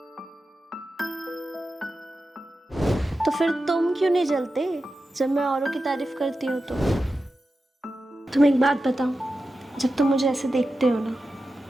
तो फिर तुम क्यों नहीं जलते जब मैं औरों की तारीफ करती हूँ तो? तुम एक बात बताओ, जब तुम मुझे ऐसे देखते हो ना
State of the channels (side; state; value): both; normal; correlation 0.92